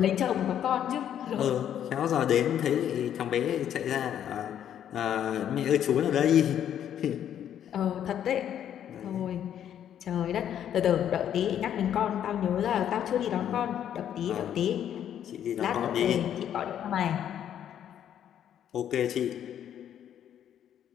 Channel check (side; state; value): right; quieter; 10.0 dB